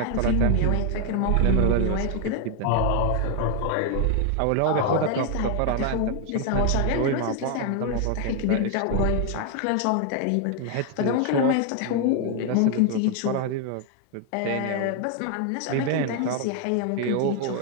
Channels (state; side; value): different; both; correlation 0.00